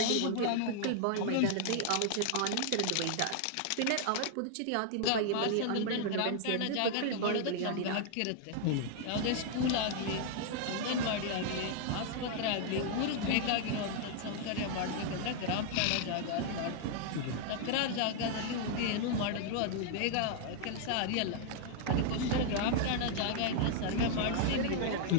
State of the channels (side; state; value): both; different; correlation 0.00